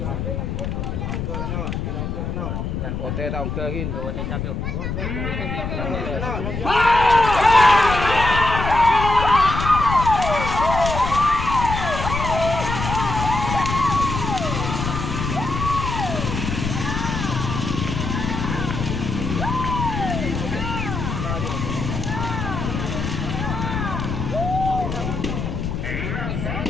Oke, tahu ke gin. Oke, siap yuk.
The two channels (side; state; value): left; noise; rumble, 3 dB below the sound